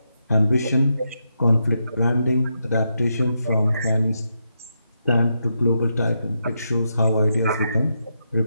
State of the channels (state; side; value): inverted; both; correlation -0.83